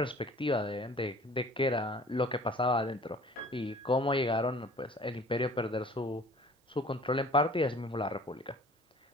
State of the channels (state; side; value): normal; both; correlation 0.49